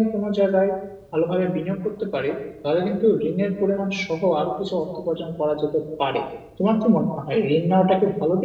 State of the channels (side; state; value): both; identical; correlation 1.00